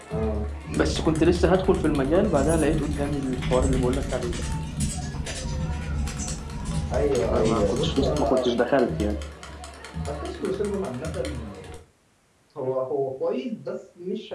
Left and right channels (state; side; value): identical; both; correlation 1.00